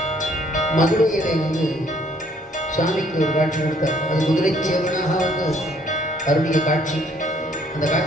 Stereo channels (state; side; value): normal; both; correlation 0.63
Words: மதுரையிலே சுவாமிக்கு ஒரு காட்சி கொடுத்தார். அது குதிரை சேவனாக அருளிய காட்சி. அந்த